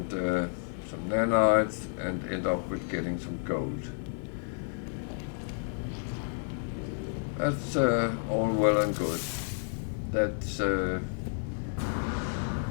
some nanites, and end up with getting some gold. That's all well and good. That's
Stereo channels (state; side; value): silent; right; 57 dB below the other